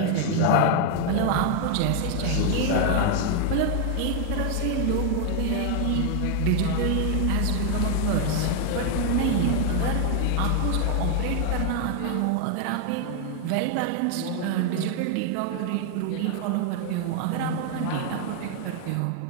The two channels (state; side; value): different; both; correlation 0.00